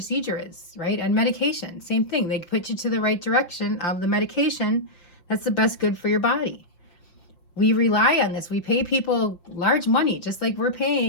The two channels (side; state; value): right; late; 5.8 ms